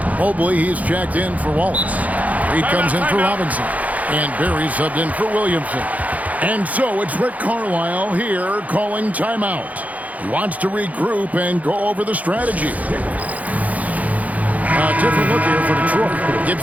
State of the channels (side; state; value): left; late; 0.073 ms